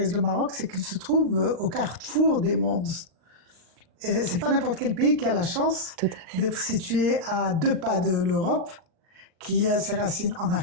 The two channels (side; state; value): left; late; 39 ms